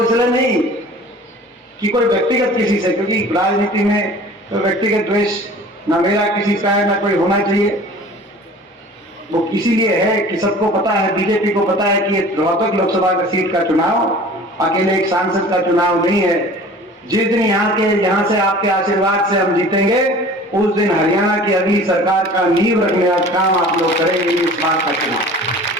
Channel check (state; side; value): normal; both; correlation 0.45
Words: इसलिए नहीं कि कोई व्यक्तिगत किसी से, क्योंकि राजनीति में तो व्यक्तिगत द्वेष ना मेरा किसी का है ना कोई होना चाहिए। वो इसीलिए है कि सबको पता है, बीजेपी को पता है कि रोहतक लोकसभा का सीट का चुनाव अकेले एक सांसद का चुनाव नहीं है। जिस दिन यहाँ से आपके आशीर्वाद से हम जीतेंगे, उस दिन हरियाणा की अगली सरकार का नींव रखने का काम आप लोग करेंगे। इस बार का चुनाव